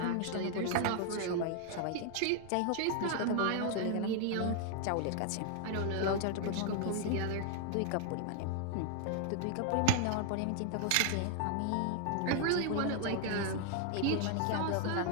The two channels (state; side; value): different; both; correlation 0.00